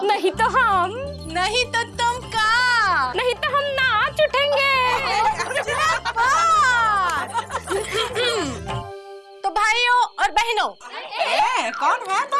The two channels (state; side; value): identical; both; correlation 1.00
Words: नहीं तो हम। नहीं तो तुम का? नहीं तो हम नाच उठेंगे। तो भाइयों और बहनों, कौन है